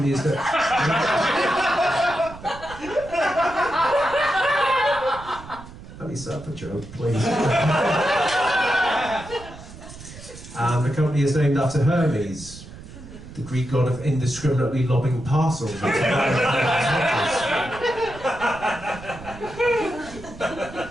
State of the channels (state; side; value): noise; right; rumble, 16 dB below the sound